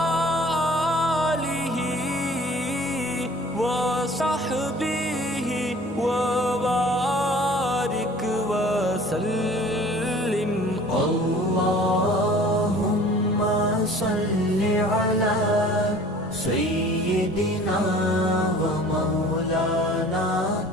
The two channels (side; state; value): both; normal; correlation 0.48